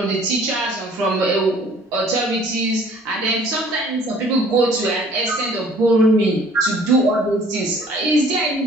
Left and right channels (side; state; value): both; normal; correlation 0.54